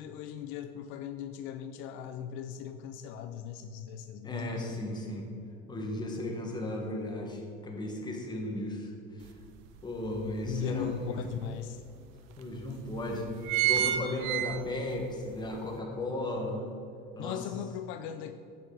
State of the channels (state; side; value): normal; both; correlation 0.18